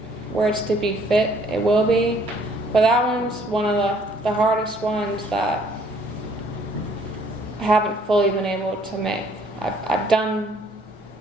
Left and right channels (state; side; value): normal; both; correlation 0.62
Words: it's to be fit, it will be. But that one's one of the hardest ones that I haven't fully been able to make. I've done